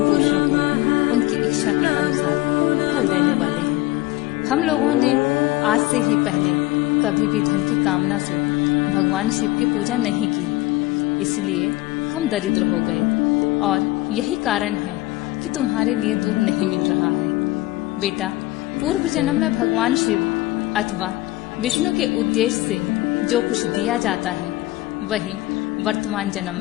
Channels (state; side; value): quieter; right; 18.2 dB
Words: पुरुषों को उनकी इच्छा के अनुसार फल देने वाले हैं। हम लोगों ने आज से ही पहले कभी भी धन की कामना से भगवान शिव की पूजा नहीं की, इसलिए हम दरिद्र हो गए और यही कारण है कि तुम्हारे लिए दूध नहीं मिल रहा है। बेटा, पूर्व जन्म में भगवान शिव अथवा विष्णु के उद्देश्य से जो कुछ दिया जाता है वही वर्तमान जन्म